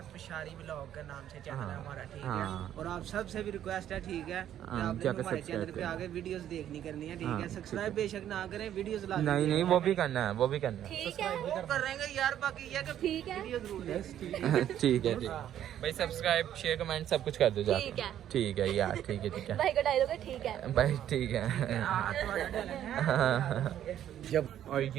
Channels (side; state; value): left; quieter; 11.0 dB